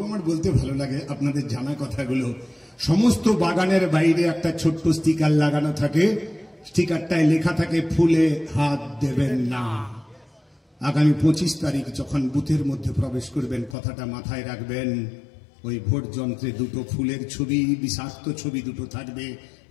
আমার বলতে ভালো লাগে আপনাদের জানা কথাগুলো। সমস্ত বাগানের বাইরে একটা ছোট্ট স্টিকার লাগানো থাকে, স্টিকারটায় লেখা থাকে ফুলে হাত দেবেন না। আগামী 25 তারিখ যখন বুথের মধ্যে প্রবেশ করবেন, কথাটা মাথায় রাখবেন। ওই ভোট যন্ত্রে দুটো ফুলের ছবি, বিষাক্ত ছবি দুটো থাকবে,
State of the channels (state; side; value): drops out; right; at 13.8 s